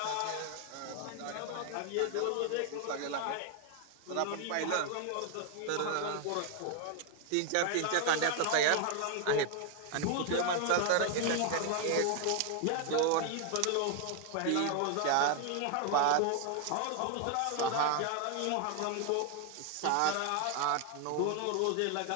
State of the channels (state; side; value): different; both; correlation 0.01